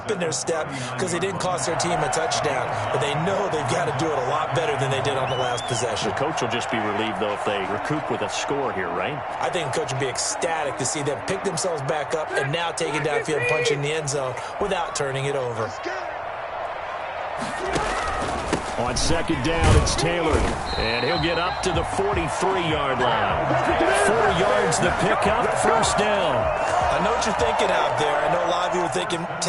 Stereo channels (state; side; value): identical; both; correlation 1.00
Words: in their step because they didn't cost their team a touchdown, but they know they've got to do it a lot better than they did on the last possession. The coach will just be relieved, though, if they recoup with a score here, right? I think the coach will be ecstatic to see them pick themselves back up and now take it downfield and punch in the end zone without turning it over. On 2nd down, it's Taylor. And he'll get up to the 43-yard line. 4 yards the pickup, 1st down. I know what you're thinking out there. I know a lot of you are thinking,